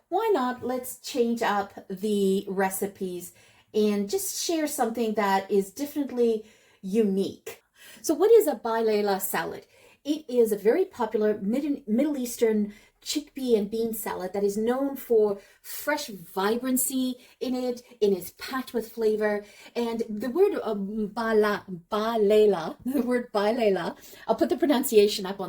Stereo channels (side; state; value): both; identical; correlation 1.00